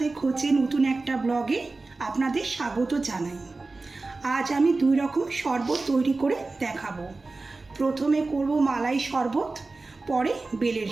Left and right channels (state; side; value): quieter; left; 3.5 dB